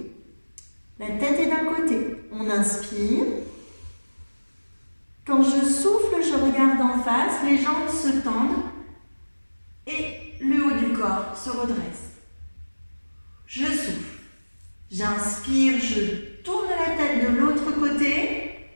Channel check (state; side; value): inverted; both; correlation -1.00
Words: La tête est d'un côté. On inspire. Quand je souffle, je regarde en face, les jambes se tendent et le haut du corps se redresse. Je souffle. J'inspire, je tourne la tête de l'autre côté